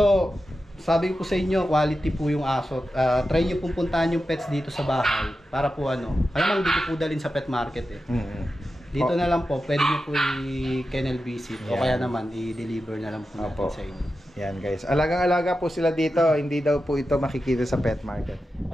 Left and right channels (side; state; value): both; normal; correlation 0.91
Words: sabi ko sa inyo, quality po yung aso. Try nyo pong puntahan yung pets dito sa bahay para po ano. Alam mo, dito po dalhin sa pet market eh. Dito na lang po, pwede nyo po i-kennel visit o Yan. kaya naman i-deliver na lang po natin Opo. sa inyo. Yan guys. Alagang-alaga po sila dito. Hindi daw po ito makikita sa pet market.